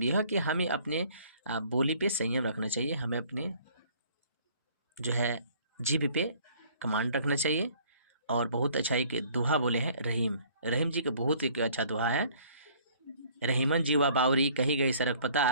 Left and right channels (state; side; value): inverted; both; correlation -0.57